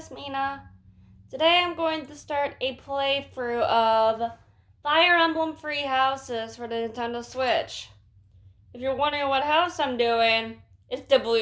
Mina. Today I'm going to start a playthrough of Fire Emblem Three Houses for the Nintendo Switch. If you're wondering what house I'm doing, it's the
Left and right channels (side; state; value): both; identical; correlation 1.00